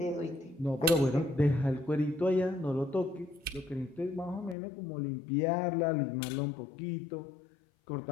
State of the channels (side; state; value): right; drops out; at 4.5 s